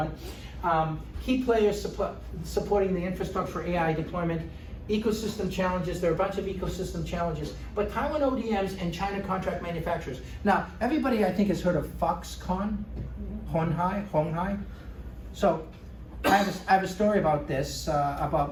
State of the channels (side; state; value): both; identical; correlation 1.00